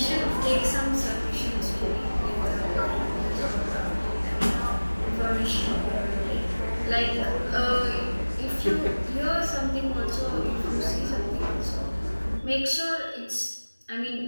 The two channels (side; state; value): both; inverted; correlation -1.00